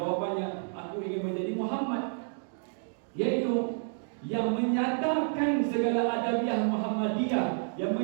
aku ingin menjadi Muhammad, yaitu yang menyatakan segala adabiah Muhammadiyah, yang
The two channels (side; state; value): left; silent; 58 dB below the other